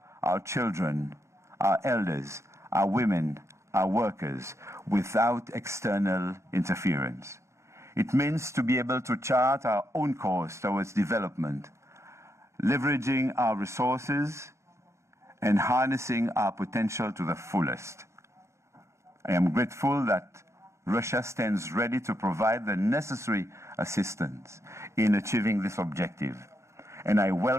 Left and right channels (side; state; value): left; late; 0.14 ms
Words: our children, our elders, our women, our workers, without external interference. It means to be able to chart our own course towards development, leveraging our resources and harnessing our potential to the fullest. I am grateful that Russia stands ready to provide the necessary assistance in achieving this objective, and I